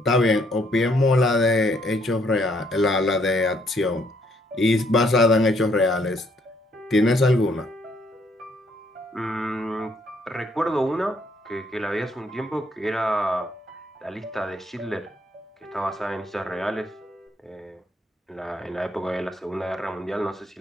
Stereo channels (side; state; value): both; normal; correlation 0.69